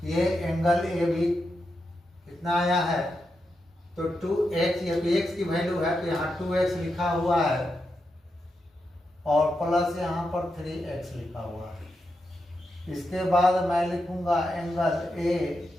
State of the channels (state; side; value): normal; both; correlation 0.86